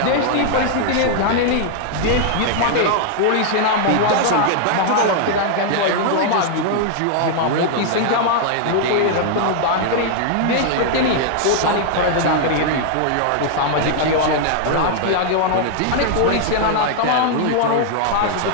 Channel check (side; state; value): both; different; correlation -0.01